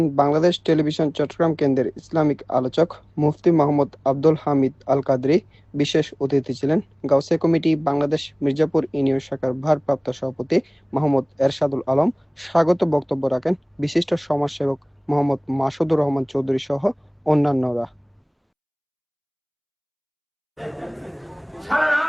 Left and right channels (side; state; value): both; identical; correlation 1.00